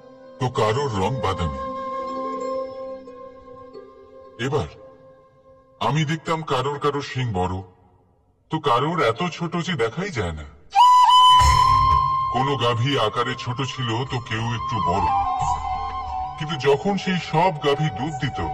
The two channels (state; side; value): identical; both; correlation 1.00